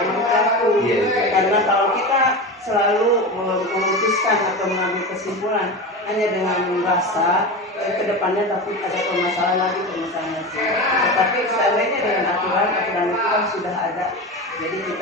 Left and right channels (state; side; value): normal; both; correlation 0.25